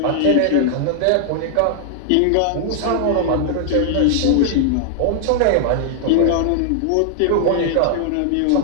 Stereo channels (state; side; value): different; both; correlation 0.00